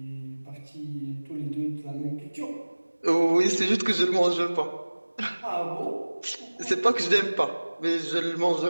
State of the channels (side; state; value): both; inverted; correlation -1.00